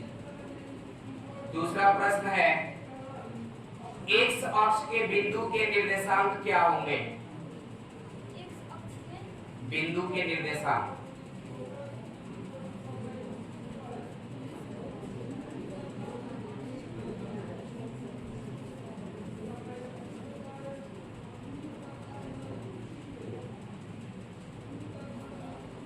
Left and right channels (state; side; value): identical; both; correlation 1.00